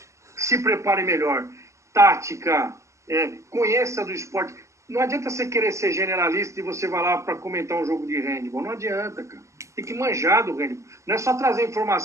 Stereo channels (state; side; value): late; left; 0.14 ms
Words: Se prepare melhor. Tática, conheça do esporte. Não adianta você querer ser generalista e você vai lá para comentar um jogo de handball. Não adianta, cara. Tem que manjar do handball. Não é só trazer